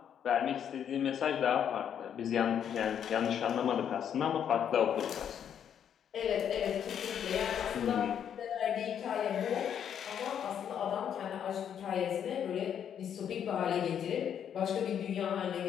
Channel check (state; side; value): quieter; right; 8.8 dB